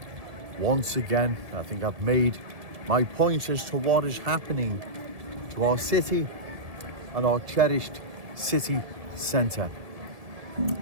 once again. I think I've made my point as to what is happening to our city and our cherished city centre.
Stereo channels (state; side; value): late; left; 1.7 ms